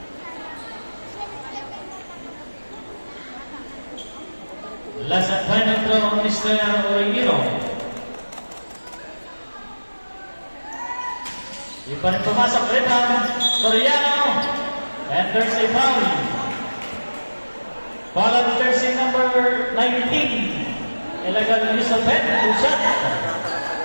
Last and final throw on Mr. Origino. Di pa rin pumasok. Rebound. Soriano. And there's a foul. Foul on jersey number 19. Illegal use of head. Two shot.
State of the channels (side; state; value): both; inverted; correlation -1.00